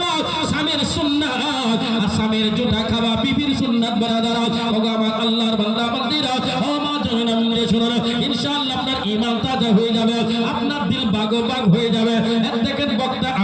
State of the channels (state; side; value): identical; both; correlation 1.00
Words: স্বামীর সুন্নাত আর স্বামীর জুঠা খাওয়া বিবির সুন্নাত বারাদারা ওগো আমার আল্লাহর বান্দা বান্দিরা ও মা জাহান্নামে শুনুন ইনশাআল্লাহ আপনার ঈমান তাজা হয়ে যাবে আপনার দিল বাগবাগ হয়ে যাবে দেখেন বক্তা